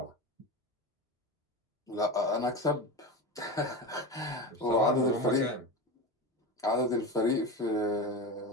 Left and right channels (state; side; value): normal; both; correlation 0.24